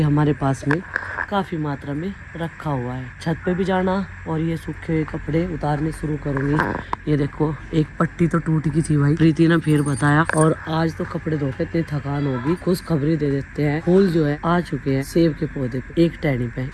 हमारे पास में काफी मात्रा में रखा हुआ है। छत पे भी जाना और ये सूखे हुए कपड़े उतारने शुरू करूंगी। ये देखो, एक पट्टी तो टूट गई थी भाई, प्रीति ने फिर बताया। और आज तो कपड़े धो के इतनी थकान होगी, खुश खबरी दे देते हैं। फूल जो है आ चुके हैं सेब के पौधे पे। एक टहनी पे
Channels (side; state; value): both; identical; correlation 1.00